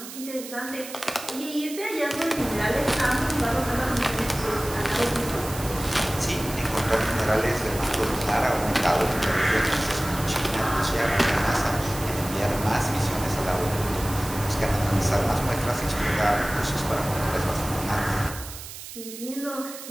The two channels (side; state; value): right; noise; hiss, 12 dB below the sound